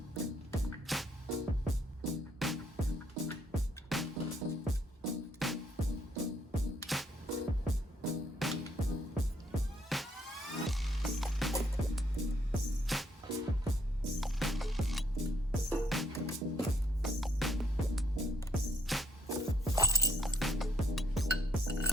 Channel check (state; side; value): normal; both; correlation 0.69